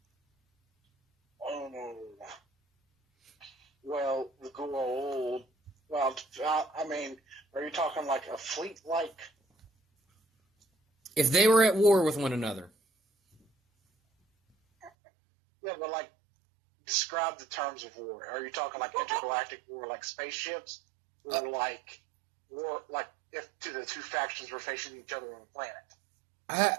Oh no. Well, the Guru. Well, I mean, are you talking like a fleet like? If they were at war with one another. Yeah, but like, describe the terms of war. Are you talking like intergalactic war, like spaceships, or like war, like if the two factions were facing each other on a planet?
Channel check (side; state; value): left; drops out; at 14.9 s